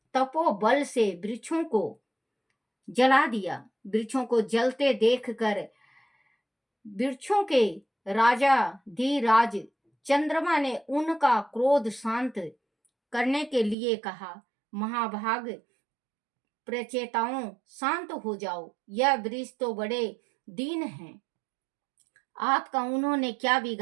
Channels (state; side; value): drops out; left; at 13.8 s